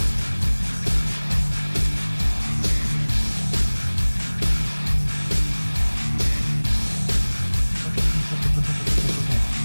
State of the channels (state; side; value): inverted; both; correlation -1.00